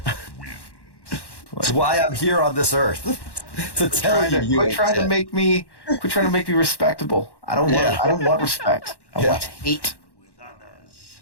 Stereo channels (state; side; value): late; right; 1.1 ms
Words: That's why I'm here on this earth. To tell you, Quit trying to make me respectable. I don't want respect. I want hate.